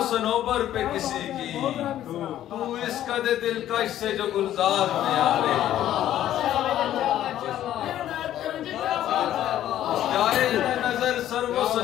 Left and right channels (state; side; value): quieter; right; 12.2 dB